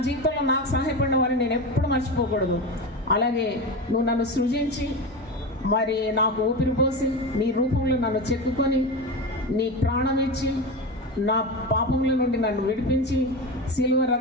జీవితంలో నాకు సహాయపడిన వారిని నేను ఎప్పుడు మర్చిపోకూడదు. అలాగే నువ్వు నన్ను సృజించి మరి నాకు ఊపిరి పోసి నీ రూపంలో నన్ను చెక్కుకొని నీ ప్రాణం ఇచ్చి నా పాపముల నుండి నన్ను విడిపించి సిలువ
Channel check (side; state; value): both; normal; correlation 0.23